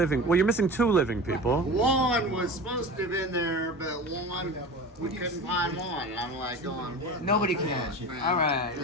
Well, you're missing 2 living people. One was supposed to have been there, but one, we couldn't find one. And I'm like going, what? Nobody can. All right,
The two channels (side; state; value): both; normal; correlation 0.33